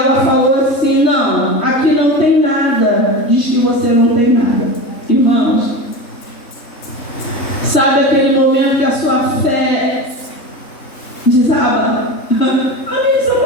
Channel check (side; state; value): right; late; 3.7 ms